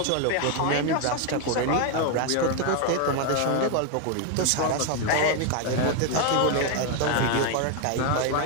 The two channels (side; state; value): both; different; correlation 0.01